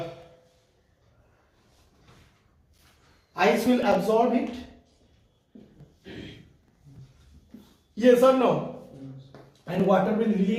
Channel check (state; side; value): identical; both; correlation 1.00